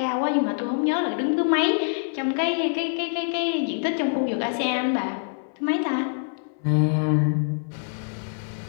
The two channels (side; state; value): right; silent; 62 dB below the other